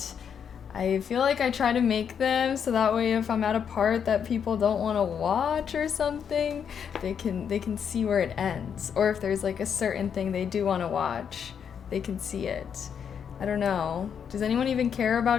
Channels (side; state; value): right; quieter; 7.6 dB